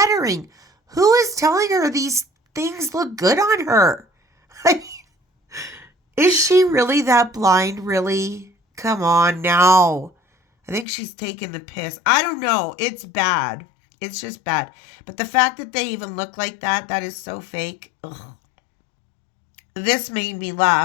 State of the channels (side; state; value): right; drops out; at 10.9 s